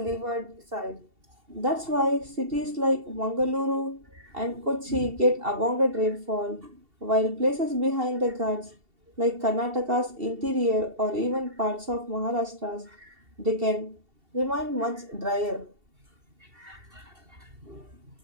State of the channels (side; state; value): left; late; 2.7 ms